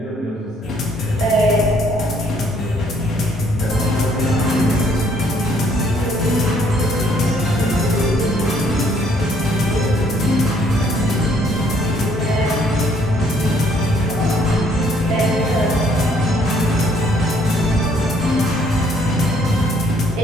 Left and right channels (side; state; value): both; normal; correlation 0.64